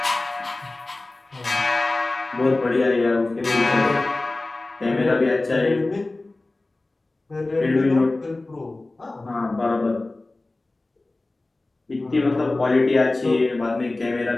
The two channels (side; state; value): right; quieter; 3.0 dB